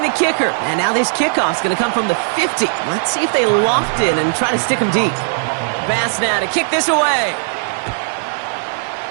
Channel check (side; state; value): left; silent; digital silence